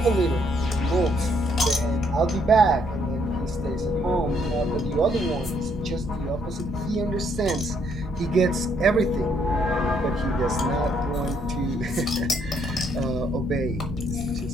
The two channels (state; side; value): normal; both; correlation 0.70